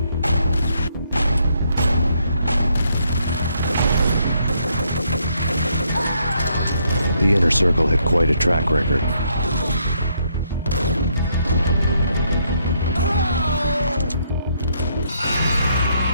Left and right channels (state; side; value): inverted; both; correlation -0.73